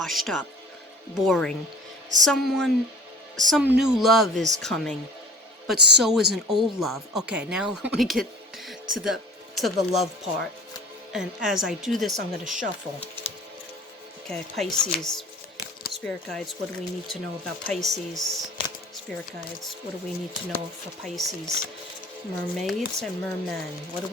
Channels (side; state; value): both; normal; correlation 0.43